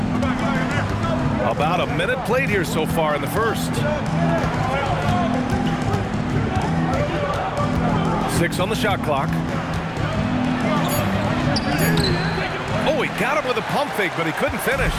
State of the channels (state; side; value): identical; both; correlation 1.00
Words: About a minute played here so far in the first. 6 on the shot clock. Oh, he got him with a pump fake, but he couldn't finish.